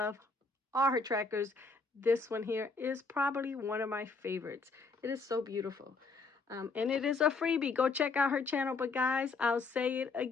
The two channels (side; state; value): right; quieter; 4.1 dB